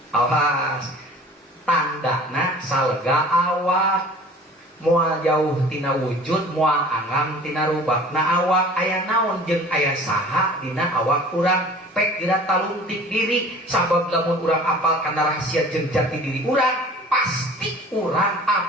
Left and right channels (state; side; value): normal; both; correlation 0.45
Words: awas tandana salega awak, moal jauh tina wujud, moal angam tina rubakna awak. Aya naon jeung aya saha dina awak urang pek geura talungtik diri. Sabab lamun urang apal kana rahasia jeung jati diri urang, pasti urang